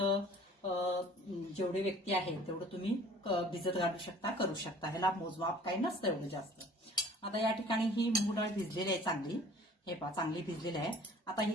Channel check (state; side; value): normal; both; correlation 0.51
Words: जेवढे व्यक्ती आहेत तेवढं तुम्ही भिजत घालू शकता, करू शकता। ह्याला मोजमाप काही नसतं एवढं जास्त। आता या ठिकाणी ही मूग डाळ भिजलेली आहे चांगली, हे पहा चांगली भिजलेली आहे। आता ही